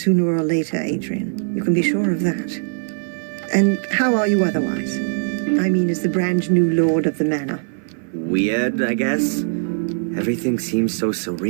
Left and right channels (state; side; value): silent; left; 58 dB below the other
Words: or later, Adrian. You can be sure of that. And how are you otherwise? I mean, as the brand new lord of the manor. Weird, I guess. Everything seems so